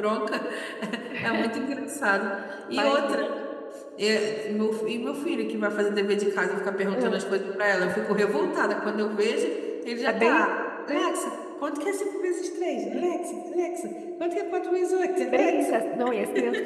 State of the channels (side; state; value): both; identical; correlation 1.00